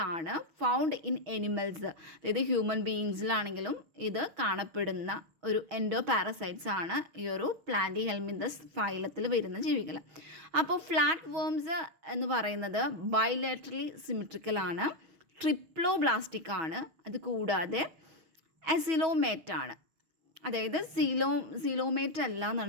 ആണ്. Found in animals. അതായത് ഹ്യൂമൻ ബീയിങ്സിലാണെങ്കിലും ഇത് കാണപ്പെടുന്ന ഒരു എൻഡോപാരസൈറ്റ്സ് ആണ് ഈ ഒരു പ്ലാന്റിഹെൽമിന്തസ് ഫൈലത്തിൽ വരുന്ന ജീവികൾ. അപ്പോൾ ഫ്ലാറ്റ് വേംസ് എന്ന് പറയുന്നത് ബൈലാറ്ററലി സിമെട്രിക്കൽ ആണ്, ട്രിപ്ലോബ്ലാസ്റ്റിക് ആണ്, അത് കൂടാതെ അസിലോമേറ്റ് ആണ്. അതായത് സീലോമേറ്റ് അല്ല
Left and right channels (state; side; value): late; left; 6.2 ms